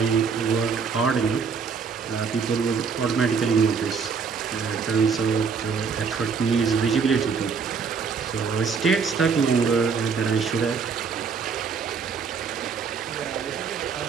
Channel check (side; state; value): left; quieter; 5.7 dB